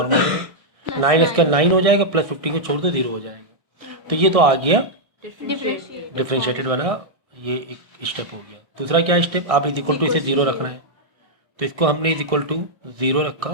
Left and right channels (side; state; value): left; late; 1.6 ms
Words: 9x का 9 हो जाएगा, प्लस 15 को छोड़ दो 0 हो जाएगा। तो ये तो आ गया डिफ्रेंशिएटेड वाला, ये एक स्टेप हो गया। दूसरा क्या स्टेप, आप इज इक्वल टू इसे 0 रखना है। तो इसको हमने इज इक्वल टू 0 रखा